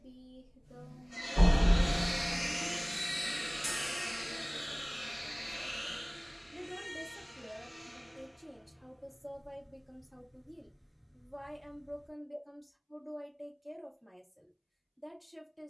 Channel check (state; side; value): identical; both; correlation 1.00